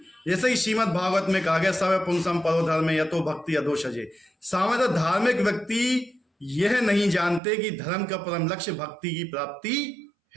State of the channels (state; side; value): drops out; left; at 7.4 s